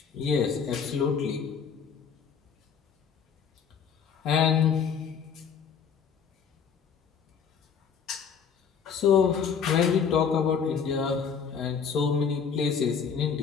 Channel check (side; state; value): right; quieter; 6.7 dB